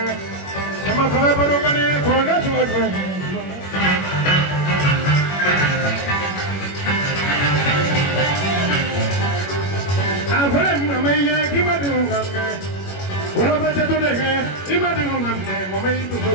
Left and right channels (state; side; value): late; right; 21 ms